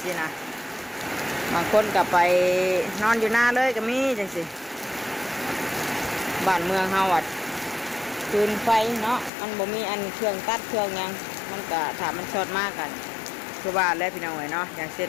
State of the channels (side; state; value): right; drops out; at 9.3 s